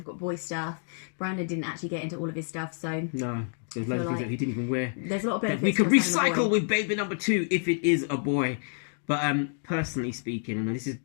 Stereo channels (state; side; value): silent; right; 59 dB below the other